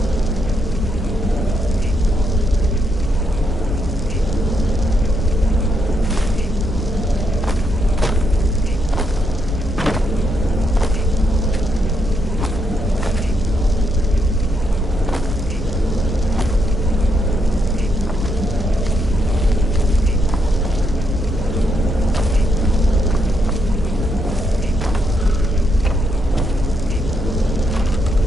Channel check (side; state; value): both; normal; correlation 0.78